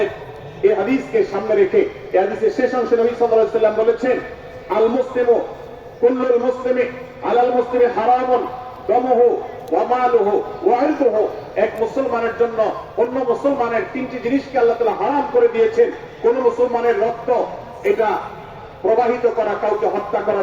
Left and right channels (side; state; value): both; identical; correlation 1.00